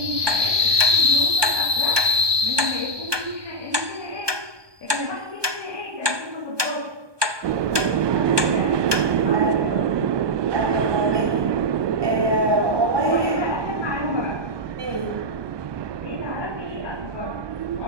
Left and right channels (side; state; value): left; late; 1.2 ms